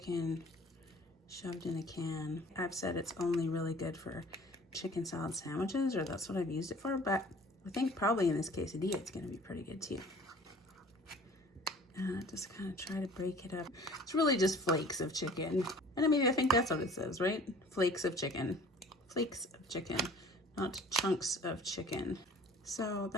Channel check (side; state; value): both; normal; correlation 0.48